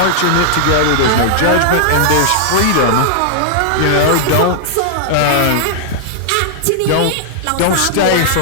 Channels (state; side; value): different; both; correlation -0.01